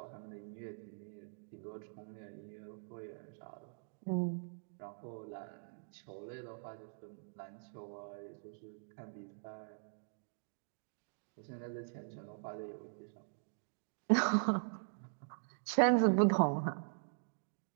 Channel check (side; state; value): left; silent; digital silence